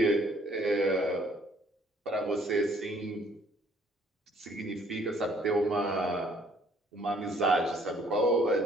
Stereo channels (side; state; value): both; normal; correlation 0.61